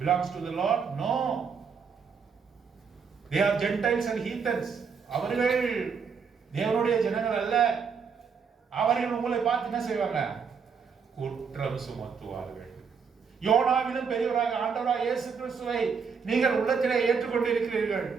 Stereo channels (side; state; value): left; quieter; 6.0 dB